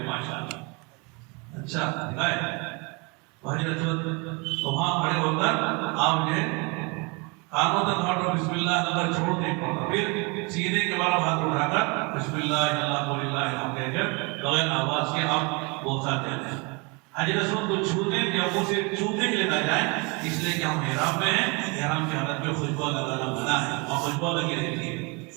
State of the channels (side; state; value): left; quieter; 30.0 dB